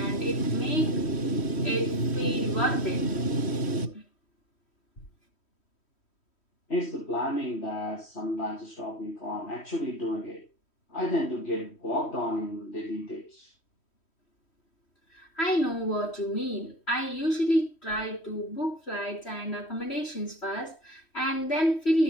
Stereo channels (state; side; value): late; right; 3.1 ms